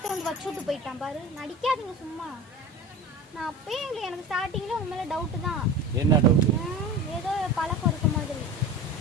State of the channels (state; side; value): normal; both; correlation 0.32